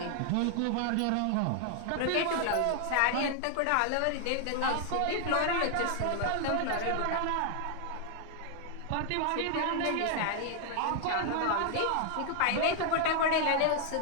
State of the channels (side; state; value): both; different; correlation 0.00